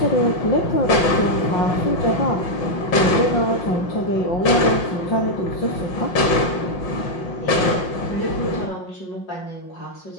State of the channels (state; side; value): late; right; 5.6 ms